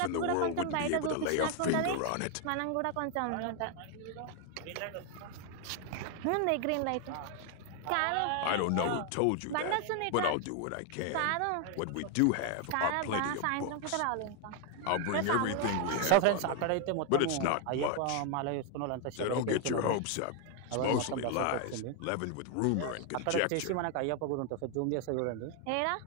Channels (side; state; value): both; different; correlation 0.00